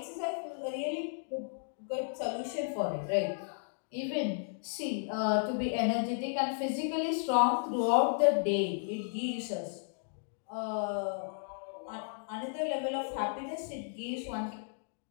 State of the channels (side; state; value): right; silent; digital silence